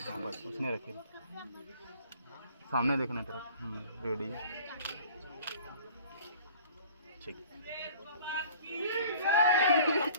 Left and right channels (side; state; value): both; inverted; correlation -0.49